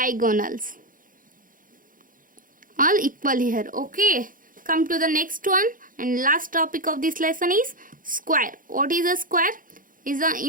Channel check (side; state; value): left; late; 0.40 ms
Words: all equal here. Okay, come to the next one and last topic of this lesson is square. What is a square?